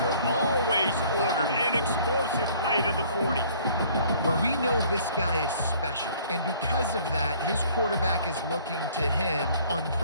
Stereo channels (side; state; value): both; inverted; correlation -0.56